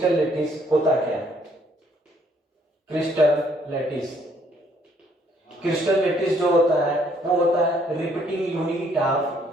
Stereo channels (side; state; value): both; normal; correlation 0.66